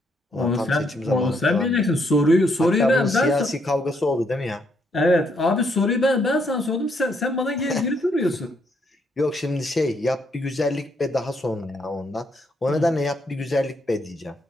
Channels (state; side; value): normal; both; correlation 0.73